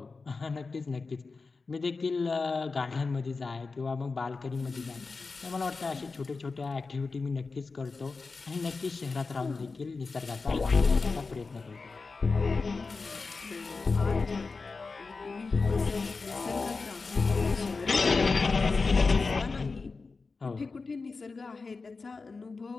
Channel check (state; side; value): quieter; right; 4.2 dB